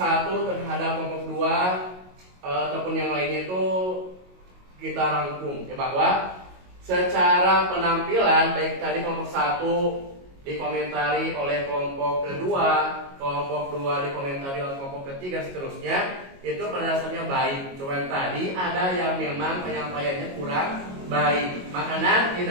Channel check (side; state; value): left; late; 22 ms